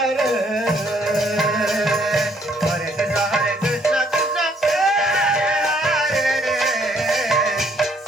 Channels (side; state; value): both; normal; correlation 0.66